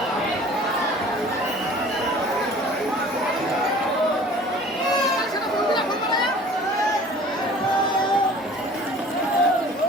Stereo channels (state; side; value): normal; both; correlation 0.47